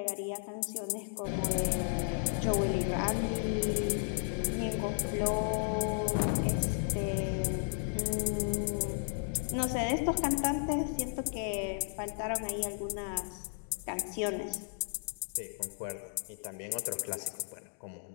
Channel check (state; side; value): silent; right; digital silence